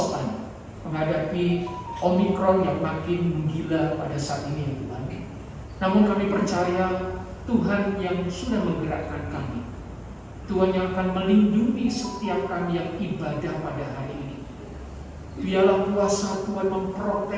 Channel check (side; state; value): both; identical; correlation 1.00